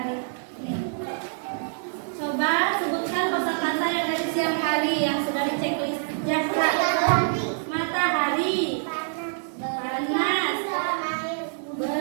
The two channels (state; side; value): silent; left; digital silence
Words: Nih. Coba sebutkan kosakata yang dari siang hari yang sudah diceklis Zahra. Matahari, panas,